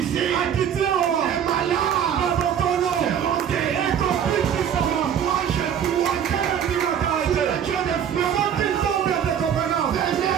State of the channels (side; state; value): left; quieter; 8.7 dB